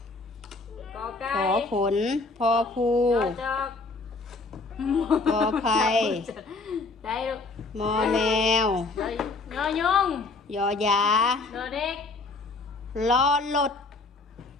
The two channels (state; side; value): quieter; right; 3.6 dB